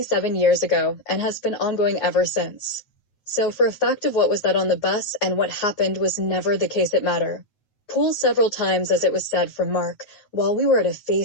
years ago and has been ongoing ever since. So for a fact of what was that on the bus and what happened was never the case it matter. Pulled several times, as it was said from Mark, while we were at a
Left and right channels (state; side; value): late; right; 9.4 ms